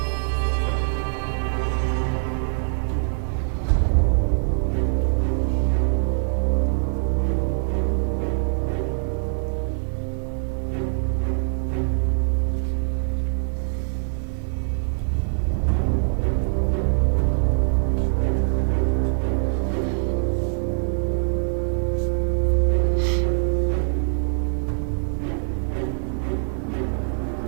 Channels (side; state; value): left; silent; digital silence